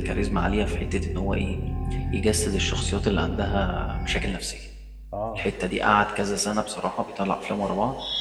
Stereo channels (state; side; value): identical; both; correlation 1.00